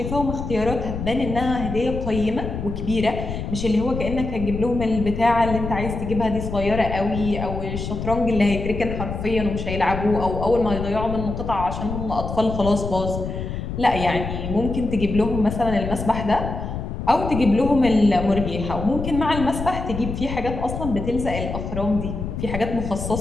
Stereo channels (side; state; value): left; noise; rumble, 5 dB below the sound